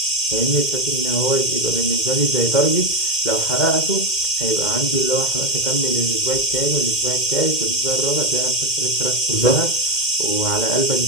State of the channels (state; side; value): late; right; 2.1 ms